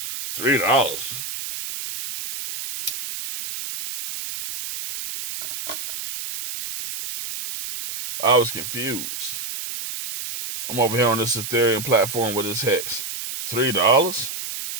$3. I was confused. I'm over here on this Ethereum platform with this hex. $3?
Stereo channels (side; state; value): right; noise; hiss, 7 dB below the sound